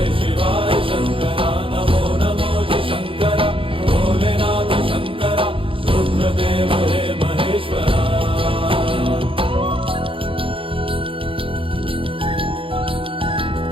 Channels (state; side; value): late; left; 0.26 ms